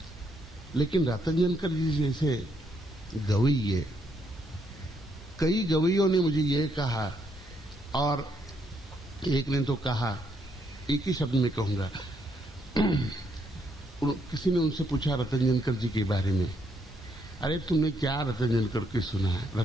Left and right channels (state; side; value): normal; both; correlation 0.74